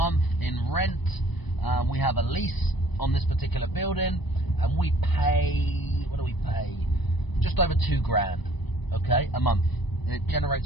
in rent. We have a lease on this particular building, and we pay, what do we pay? Just over £2,000, okay, a month. It generates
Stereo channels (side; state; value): right; late; 1.0 ms